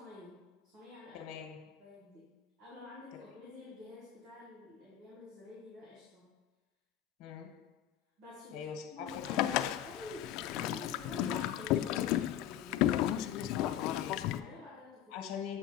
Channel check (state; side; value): quieter; right; 11.1 dB